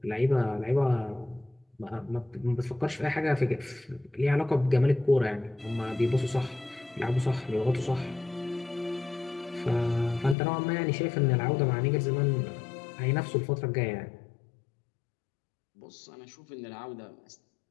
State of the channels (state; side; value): drops out; right; at 10.4 s